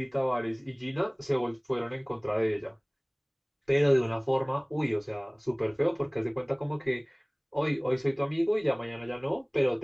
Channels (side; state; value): both; identical; correlation 1.00